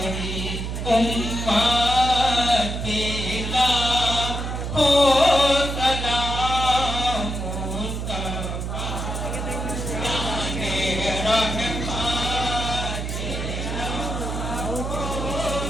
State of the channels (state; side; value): noise; right; hum, 4 dB below the sound